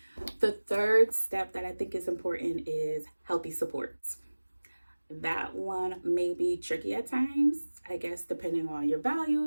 The third step that I think is important is healthy supports. That one may be tricky at times, I guess, depending on your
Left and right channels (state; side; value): inverted; both; correlation -1.00